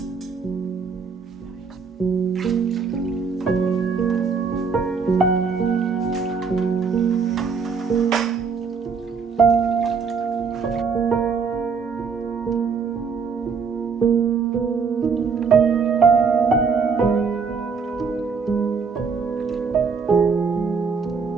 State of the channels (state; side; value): quieter; left; 5.5 dB